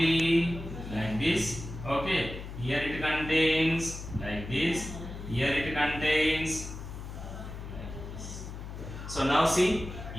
like this. Okay. Here it contains like this. Here it contains. So now see,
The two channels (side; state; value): left; noise; hum, 10 dB below the sound